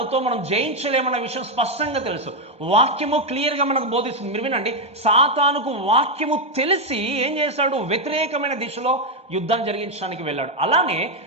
మనం జయించలేమన్న విషయం స్పష్టంగా తెలుసు. వాక్యము క్లియర్గా మనకు బోధిస్తుంది. మీరు వినండి, సాతానుకు వాక్యము తెలిసి ఏం చేశాడు? వ్యతిరేకమైన దిశలో యుద్ధం జరిగించడానికి వెళ్ళాడు. అలానే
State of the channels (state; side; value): late; left; 1.2 ms